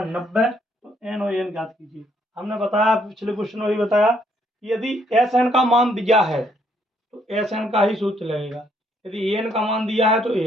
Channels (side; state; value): both; normal; correlation 0.70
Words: 90 तो N और N ज्ञात कीजिए। हमने बताया पिछले क्वेश्चन में भी बताया कि यदि SN का मान दिया है तो SN का ही सूत्र लगेगा, यदि AN का मान दिया है तो